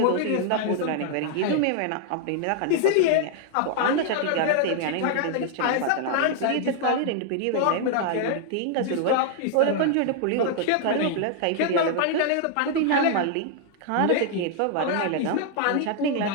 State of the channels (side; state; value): both; different; correlation 0.00